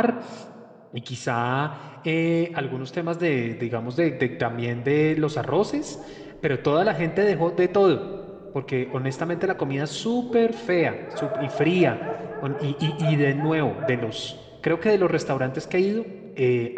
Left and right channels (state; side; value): identical; both; correlation 1.00